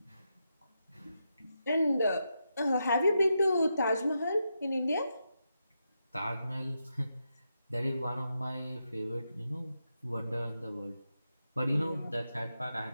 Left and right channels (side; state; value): both; inverted; correlation -0.85